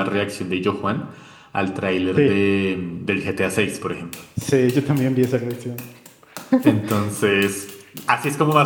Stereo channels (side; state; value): both; identical; correlation 1.00